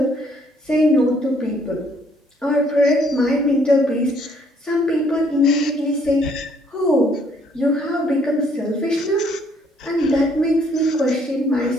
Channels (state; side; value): normal; both; correlation 0.65